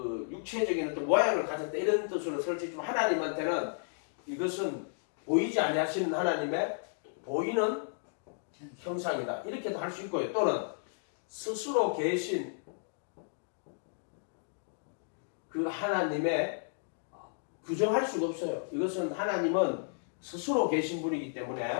육체적인 어떤 모양을 가졌다. 이런 뜻으로 설치지만 하나님한테는 이것은 보이지 아니하시는 하나님의 보이는 형상이다. 이렇게도 할 수 있고요. 또는 스스로 계신 그 하나님의 규정할 수가 없어요. 이것은 하나님은 스스로 계신 분이기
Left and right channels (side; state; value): right; silent; digital silence